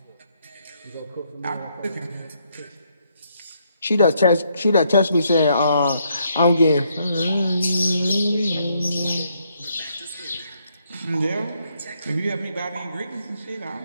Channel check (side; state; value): both; inverted; correlation -0.73